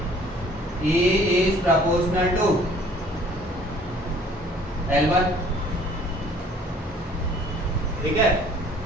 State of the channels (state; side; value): normal; both; correlation 0.55